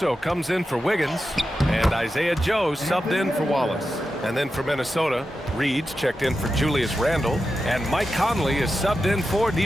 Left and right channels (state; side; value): normal; both; correlation 0.90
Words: comes in for Wiggins. And Isaiah Joe subbed in for Wallace. And then for Minnesota, Reed's checked in for Julius Randle. And Mike Conley is subbed in for